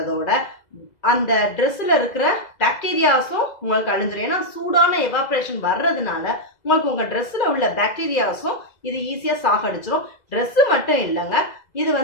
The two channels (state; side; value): late; right; 2.0 ms